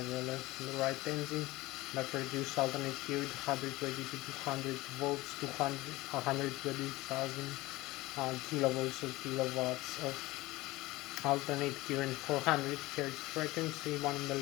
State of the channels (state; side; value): quieter; right; 19.5 dB